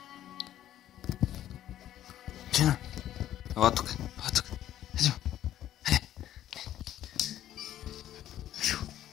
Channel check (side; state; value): right; quieter; 12.1 dB